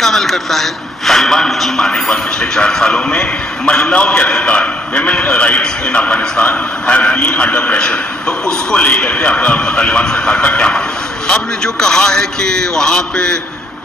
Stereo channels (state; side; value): normal; both; correlation 0.67